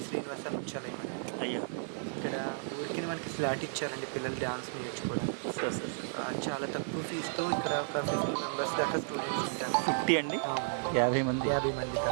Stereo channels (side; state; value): left; silent; digital silence